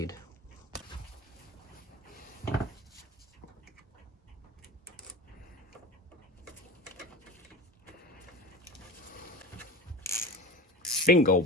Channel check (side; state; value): both; normal; correlation 0.31